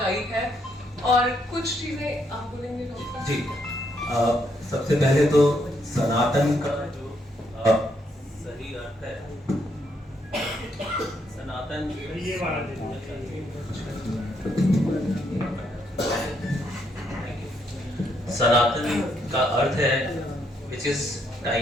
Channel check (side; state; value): both; normal; correlation 0.74